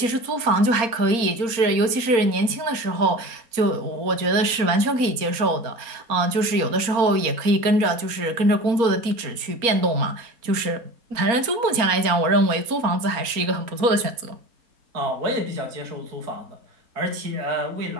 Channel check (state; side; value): late; left; 4.3 ms